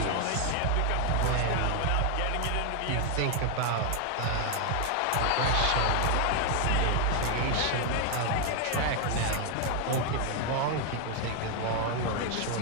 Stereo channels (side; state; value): both; different; correlation 0.01